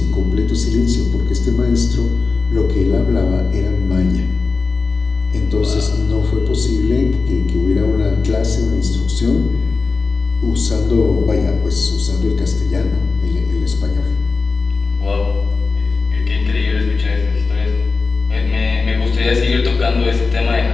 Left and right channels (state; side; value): quieter; right; 4.2 dB